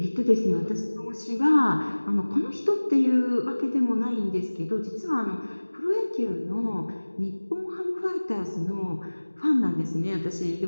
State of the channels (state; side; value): inverted; both; correlation -1.00